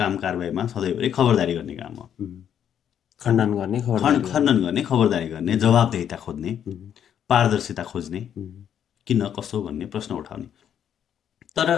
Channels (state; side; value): quieter; right; 9.2 dB